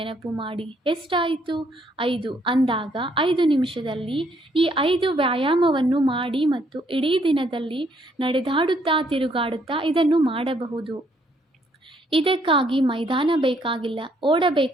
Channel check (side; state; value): both; normal; correlation 0.69